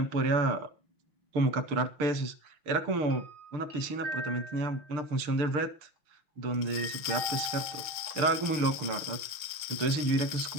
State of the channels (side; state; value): left; late; 5.7 ms